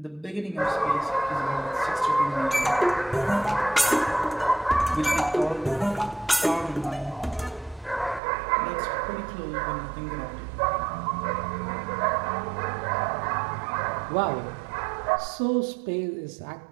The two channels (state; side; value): drops out; left; at 8.2 s